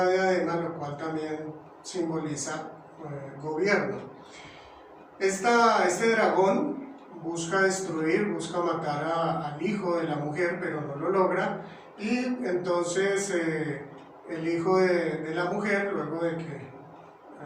diadema, lo cual también simboliza gobierno. Este dragón busca destruir, busca matar al hijo de la mujer, pero no lo logra. Y entonces el hijo de la mujer, luego de que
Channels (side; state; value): both; identical; correlation 1.00